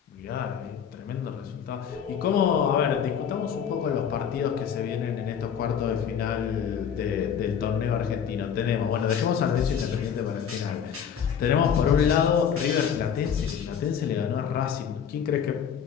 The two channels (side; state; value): right; quieter; 7.9 dB